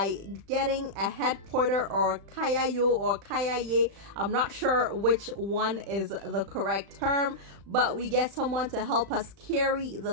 getting a head porter or kayayo or kayaye. I'm not sure which one is the correct term, but we get someone to help us carry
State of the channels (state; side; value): late; left; 35 ms